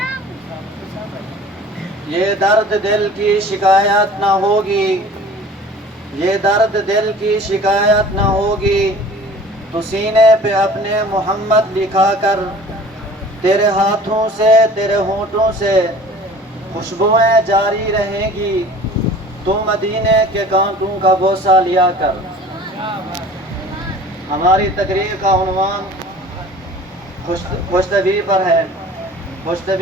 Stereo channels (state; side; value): normal; both; correlation 0.45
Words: یہ درد دل کی شکایت نہ ہوگی، یہ درد دل کی شکایت نہ ہوگی، تو سینے پہ اپنے محمد لکھا کر تیرے ہاتھوں سے تیرے ہونٹوں سے خوشبوئیں جاری رہیں گی، تو مدینے کے کانٹوں کا بوسہ لیا کر۔ ہماری تقریر کا عنوان خوش طبعی پر ہے۔ خوش